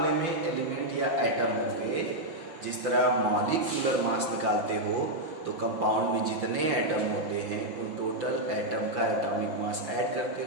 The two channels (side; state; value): left; late; 5.8 ms